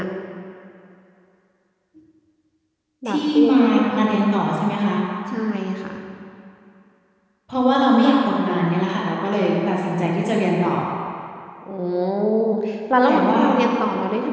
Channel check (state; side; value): identical; both; correlation 1.00